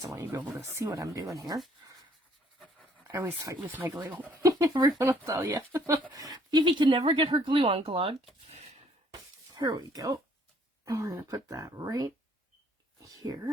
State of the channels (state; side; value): normal; both; correlation 0.62